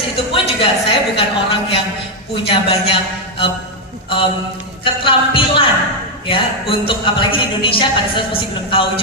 itu pun juga saya bukan orang yang punya banyak keterampilan ya, untuk apalagi di Indonesia pada saat masih belum tahu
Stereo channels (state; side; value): normal; both; correlation 0.02